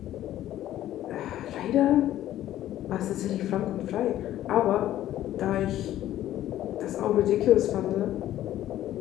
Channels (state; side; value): quieter; right; 13.0 dB